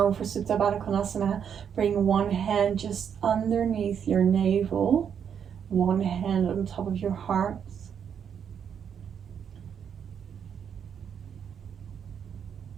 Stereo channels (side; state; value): left; quieter; 7.9 dB